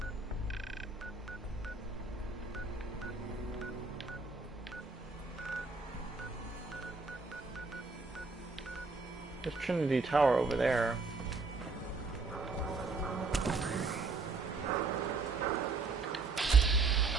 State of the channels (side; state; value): left; quieter; 4.0 dB